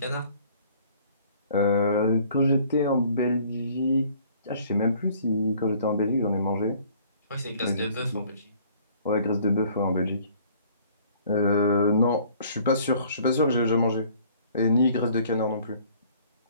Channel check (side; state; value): both; inverted; correlation -0.56